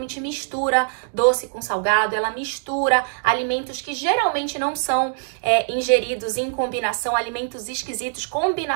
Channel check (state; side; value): silent; left; digital silence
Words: mistura doce com salgado, ela mistura alimentos que geralmente não são ingeridos em combinação, alimentos esquisitos,